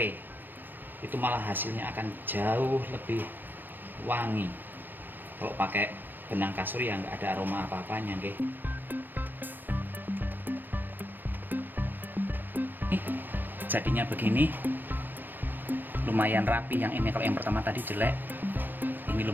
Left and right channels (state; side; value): late; left; 0.093 ms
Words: Itu malah hasilnya akan jauh lebih wangi. Kalau pakai benang kasur ya nggak ada aroma apa-apanya, nggih. Jadinya begini. Lumayan rapi. Yang ini kalau yang pertama tadi jelek, ini